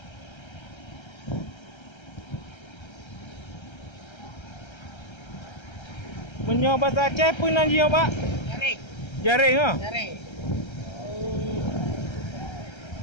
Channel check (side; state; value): right; late; 1.3 ms